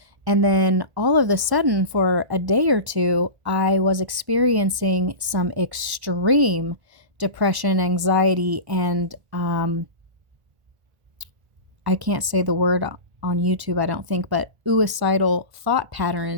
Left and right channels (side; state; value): left; late; 1.4 ms